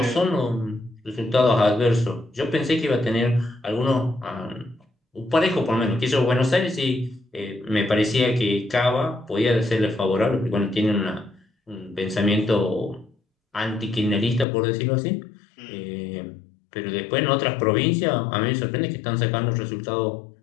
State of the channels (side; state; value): right; drops out; at 14.5 s